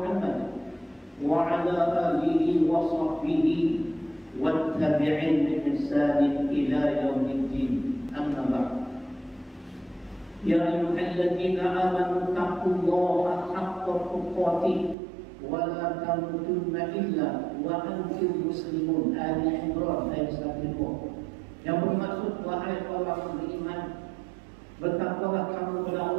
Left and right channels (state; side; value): drops out; left; at 15.0 s